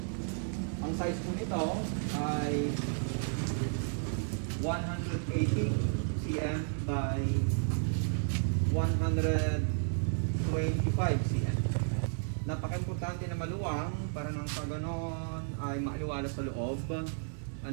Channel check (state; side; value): silent; left; digital silence